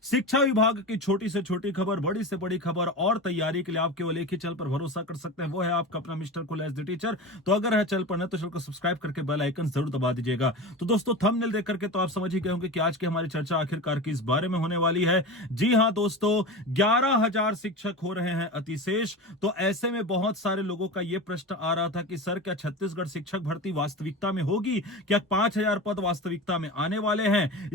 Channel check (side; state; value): both; normal; correlation 0.28